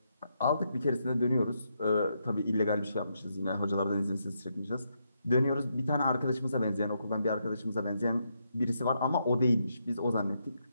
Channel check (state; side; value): inverted; both; correlation -0.80